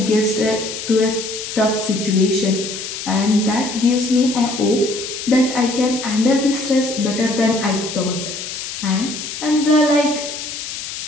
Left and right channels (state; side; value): noise; left; hiss, 7 dB below the sound